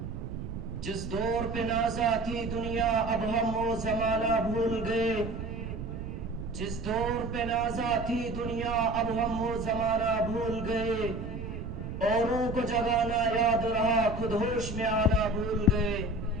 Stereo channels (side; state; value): right; noise; rumble, 7 dB below the sound